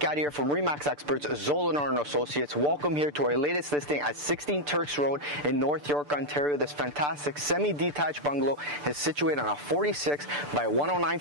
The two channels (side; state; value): left; late; 6.8 ms